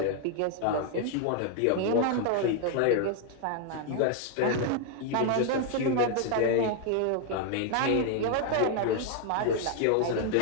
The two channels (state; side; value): different; both; correlation 0.00